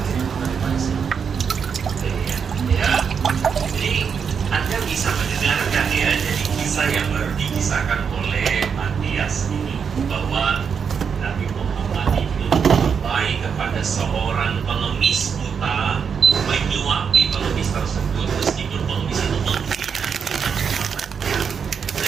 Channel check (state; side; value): quieter; left; 6.6 dB